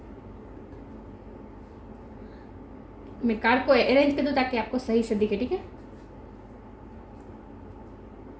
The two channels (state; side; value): identical; both; correlation 1.00